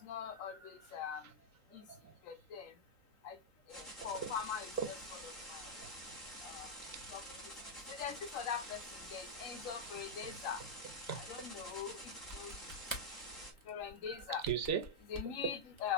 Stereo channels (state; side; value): late; right; 3.9 ms